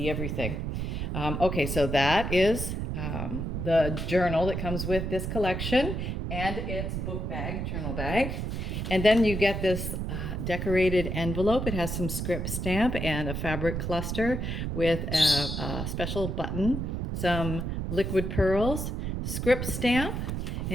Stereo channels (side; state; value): right; noise; rumble, 3 dB below the sound